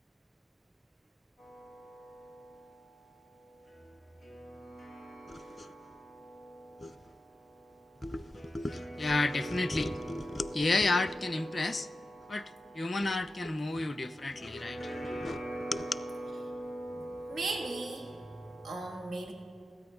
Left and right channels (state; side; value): normal; both; correlation 0.92